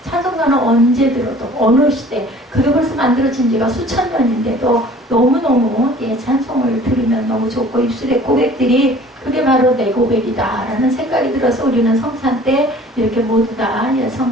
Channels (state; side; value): normal; both; correlation 0.49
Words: 찬송가는 언제 들어도 어느 시대 그게 벌써 만들어진 지가 수천 년인데도 너무너무 찬송을 들으면 너무 좋고 입술의 고백들이 그게 바로 내 고백이다 라는 생각이 들어서 우리는 성찬 때 이렇게 모두 다